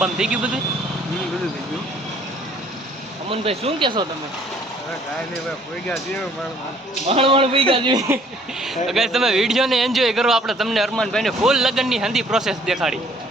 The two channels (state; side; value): normal; both; correlation 0.60